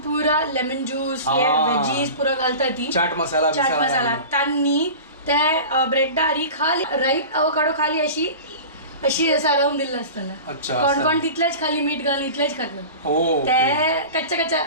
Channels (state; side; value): inverted; both; correlation -0.34